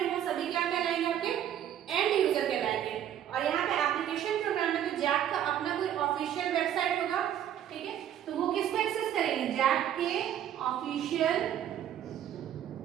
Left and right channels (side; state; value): left; quieter; 10.5 dB